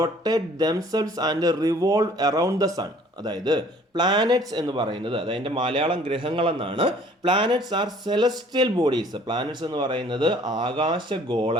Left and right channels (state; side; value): normal; both; correlation 0.55